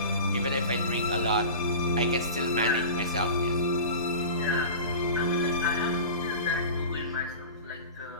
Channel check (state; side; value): inverted; both; correlation -0.34